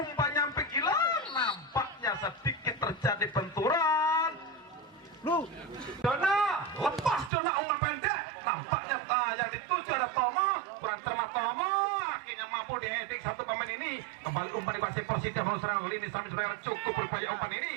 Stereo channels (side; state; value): left; drops out; at 7.3 s